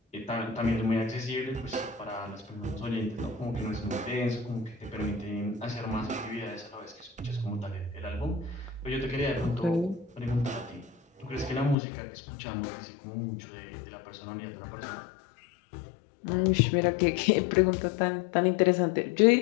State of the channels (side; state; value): right; drops out; at 11.8 s